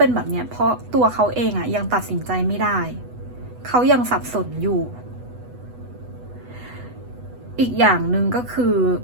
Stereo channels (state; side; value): late; left; 8.1 ms